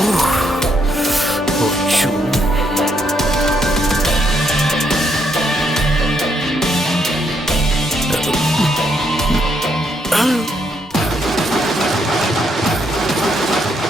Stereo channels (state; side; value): normal; both; correlation 0.75